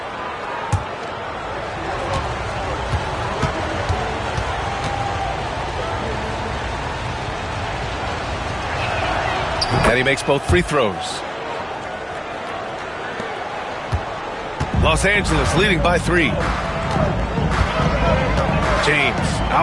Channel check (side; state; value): both; identical; correlation 1.00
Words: And he makes both free throws. Los Angeles leading by 3. James